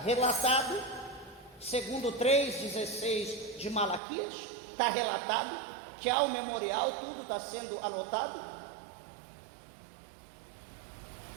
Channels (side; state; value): left; drops out; at 4.0 s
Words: relatado, segundo 3,16 de Malaquias, está relatado que há um memorial, tudo está sendo anotado.